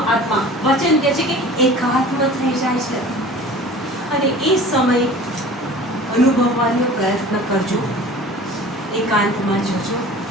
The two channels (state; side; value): normal; both; correlation 0.42